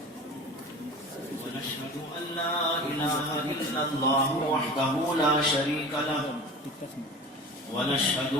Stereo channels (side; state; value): both; normal; correlation 0.36